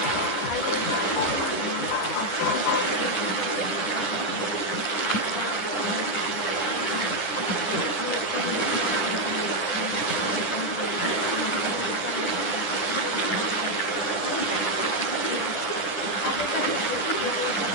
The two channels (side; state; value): right; late; 10 ms